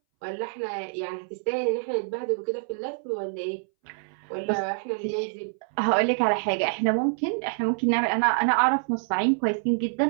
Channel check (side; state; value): left; silent; 61 dB below the other